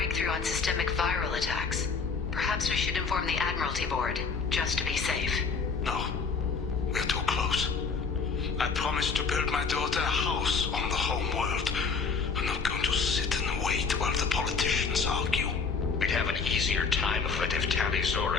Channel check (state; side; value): quieter; right; 5.1 dB